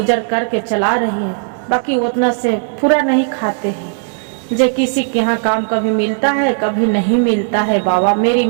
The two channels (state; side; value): silent; left; digital silence